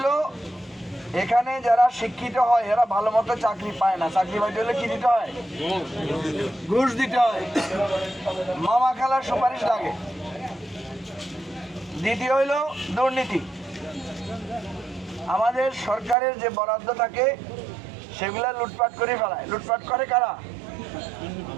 এখানে যারা শিক্ষিত হয় এরা ভালো মতো চাকরি পায় না। চাকরি পাইতে হলে কি দিতে হয়? ঘুষ দিতে হয়, মামা খালার সুপারিশ লাগে। দ্বিতীয় হইল দুর্নীতি। আমাদের সরকারের যে বরাদ্দ থাকে সেগুলা লুটপাট করে ফেলায়। লুটপাট করে কারা?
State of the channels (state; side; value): drops out; left; at 16.2 s